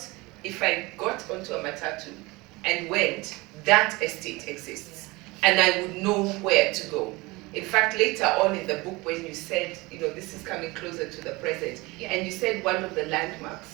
if I got onto a matatu and went, that estate exists, and I would know where to go. In fact, later on in the book, when you said, this is coming closer to the present, and you said one of the landmarks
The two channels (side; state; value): left; quieter; 23.0 dB